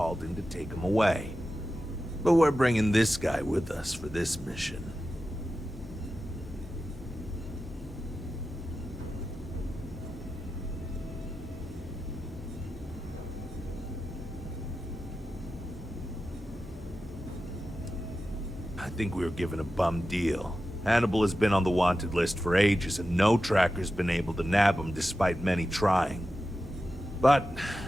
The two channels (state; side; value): normal; both; correlation 0.92